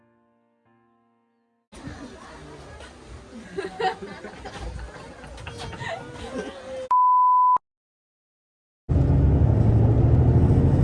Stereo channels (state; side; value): identical; both; correlation 1.00